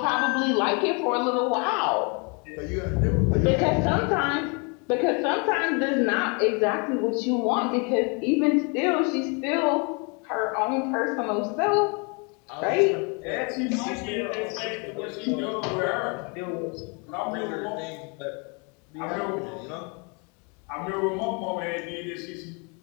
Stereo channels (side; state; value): right; quieter; 33.6 dB